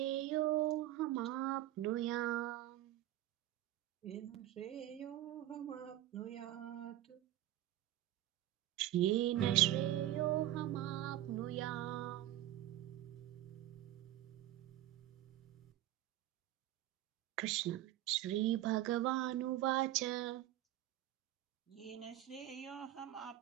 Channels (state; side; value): quieter; left; 14.0 dB